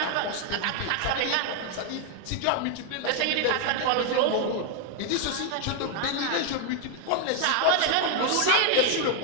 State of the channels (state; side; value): different; both; correlation 0.01